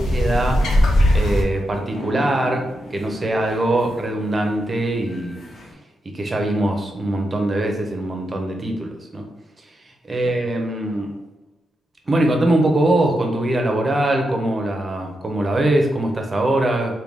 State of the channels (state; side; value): normal; both; correlation 0.86